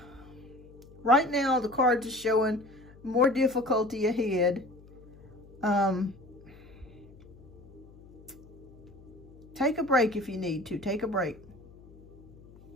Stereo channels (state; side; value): noise; left; hum, 22 dB below the sound